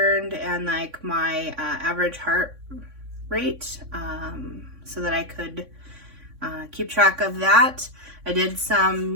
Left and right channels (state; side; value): late; left; 3.6 ms